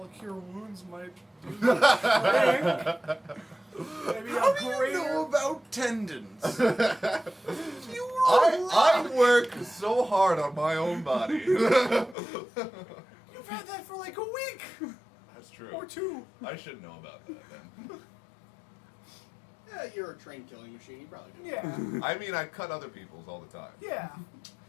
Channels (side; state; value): right; drops out; at 12.2 s